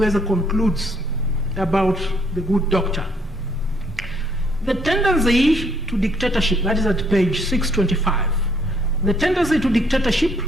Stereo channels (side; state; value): both; normal; correlation 0.67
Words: concludes about the good doctor. The tendency to dictatorship, that is at page 625. The tendency to dictatorship